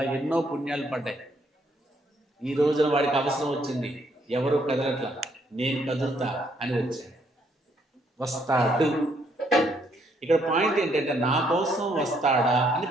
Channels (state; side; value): normal; both; correlation 0.70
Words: ఎన్నో పుణ్యాలు పడ్డాయి. ఈ రోజున వాడికి అవసరం వచ్చింది, ఎవరు కదలట్లా, నేను కదులుతా అని వచ్చాడు. వస్తాడు. ఇక్కడ పాయింట్ ఏంటంటే, నా కోసం వస్తాడా అని